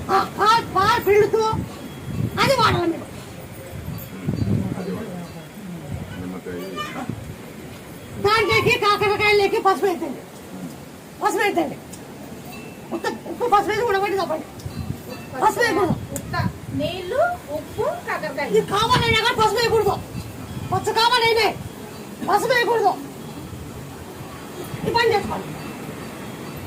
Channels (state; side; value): identical; both; correlation 1.00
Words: పాలు పిండుతూ అది వాడాలి. మీరు దాంట్లోకి కాకరకాయలకి పసుపు వేద్దండి. పసుపు వేద్దండి. ఉప్పు పసుపు వేసి ఉడబట్టి తప్పండి. పసుపు వేయకూడదు. నీళ్లు ఉప్పు కాకరకాయ ఇది కావాలైనా కానీ పసుపు వేయకూడదు. పచ్చ కావాలైనా పసుపు వేయకూడదు. ఈ పని చేసుకోండి.